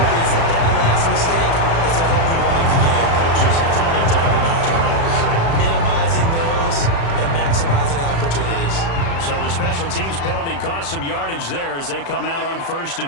is that last mistake is their only one of the game. Coaches, that's all they talk about, turnovers, right? Minimizing those and maximizing opportunities. So the special teams penalty cost some yardage there as they come out on 1st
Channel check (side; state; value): right; late; 36 ms